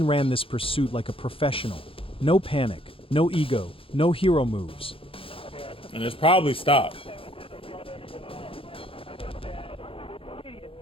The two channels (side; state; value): right; late; 0.27 ms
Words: ran this pursuit like a professional. No panic, no ego, no hero moves. And it's probably stopped.